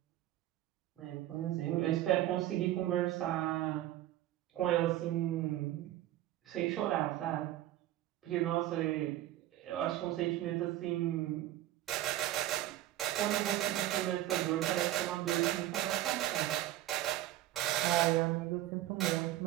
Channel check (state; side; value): quieter; left; 14.5 dB